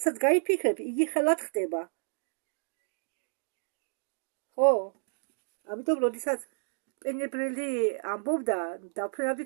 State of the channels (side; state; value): left; silent; digital silence